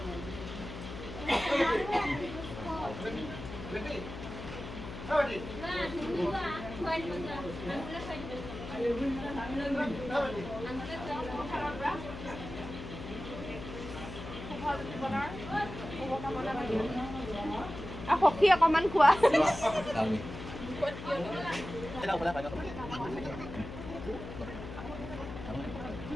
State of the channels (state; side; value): noise; left; hum, 10 dB below the sound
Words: আৰু সখী অকণমান খোৱা